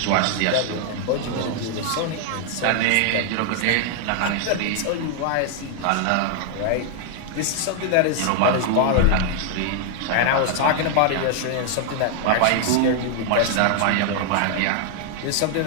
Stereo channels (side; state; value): both; different; correlation 0.00